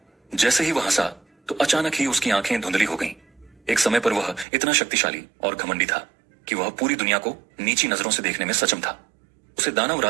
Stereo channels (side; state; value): left; drops out; at 4.5 s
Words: जैसे ही वह हंसा तो अचानक ही उसकी आंखें धुंधली हो गईं। एक समय पर वह इतना शक्तिशाली और घमंडी था कि वह पूरी दुनिया को नीची नजरों से देखने में सक्षम था। उसे दानव